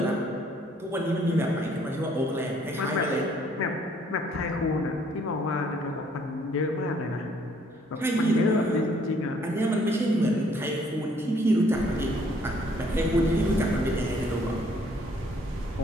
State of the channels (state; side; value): normal; both; correlation 0.63